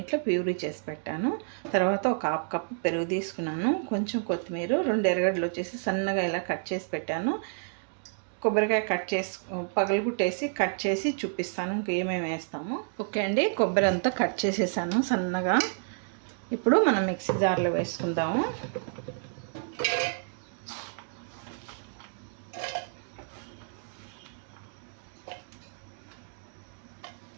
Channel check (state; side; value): silent; left; digital silence